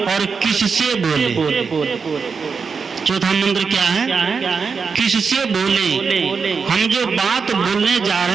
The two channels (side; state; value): left; quieter; 5.4 dB